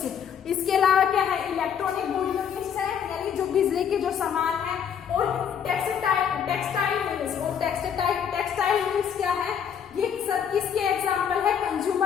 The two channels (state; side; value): quieter; right; 8.1 dB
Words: इसके अलावा क्या है इलेक्ट्रॉनिक गुड यूनिट्स है यानी जो बिजली के जो सामान है, और टेक्सटाइल यूनिट्स, और टेक्सटाइल यूनिट्स क्या है ये सब किसके एग्जाम्पल है,